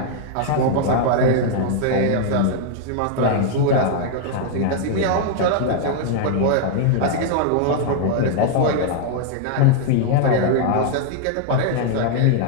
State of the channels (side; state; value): both; different; correlation -0.01